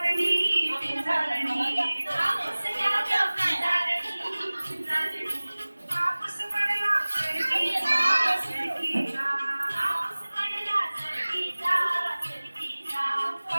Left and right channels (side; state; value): both; inverted; correlation -1.00